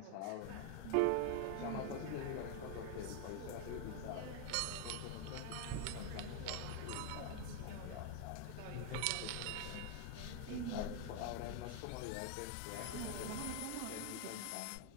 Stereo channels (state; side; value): different; both; correlation 0.00